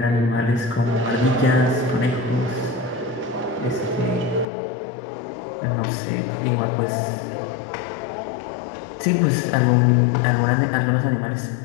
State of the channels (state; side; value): drops out; right; at 4.5 s